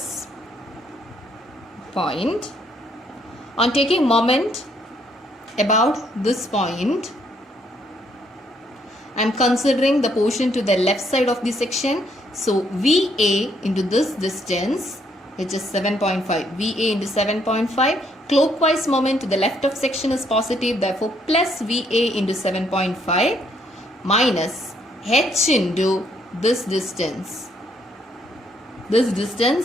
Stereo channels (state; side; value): normal; both; correlation 0.70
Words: point. On taking moment about this point, I am considering the portion to the left side of the section. So VA into this distance, which is 7.5. VA into 7.5. Clockwise moment to the left of section is positive. Therefore, plus VA into 7.5 minus H into this distance. This distance